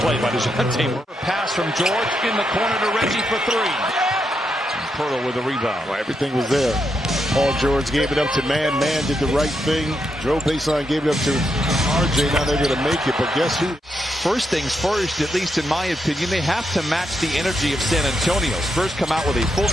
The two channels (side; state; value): both; normal; correlation 0.82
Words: play by DeJounte Murray. Pass from George in the corner to Reggie for 3. Pirtle with a rebound. Well, everything was there. Paul George gave it up to Mann. Mann did the right thing. Drove baseline, gave it up to RJ. Now they're going to make it. But guess who? First things first, at least in my opinion, they have to match the energy of San Antonio. Spurs come out with a